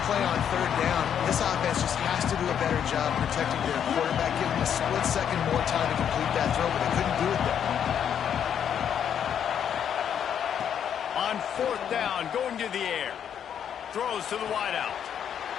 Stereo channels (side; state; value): right; quieter; 8.7 dB